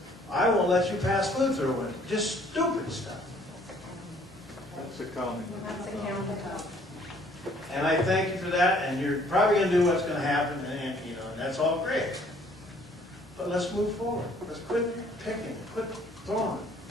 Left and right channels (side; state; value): both; normal; correlation 0.60